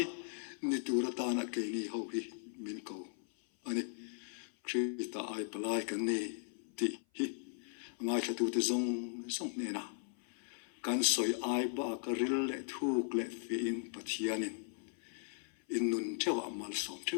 ni tu ra ta na ke ni ho hi min ko ani Krista ai palai kan ni ti hi ngai thatu te zong ne na kan soi ai ba ka hril le thuk le fi in Pathian in nun thewa mal som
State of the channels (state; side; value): silent; right; 53 dB below the other